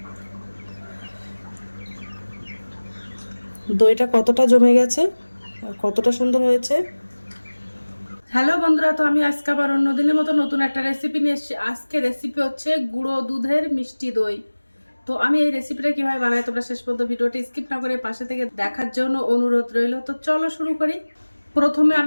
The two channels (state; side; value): inverted; both; correlation -1.00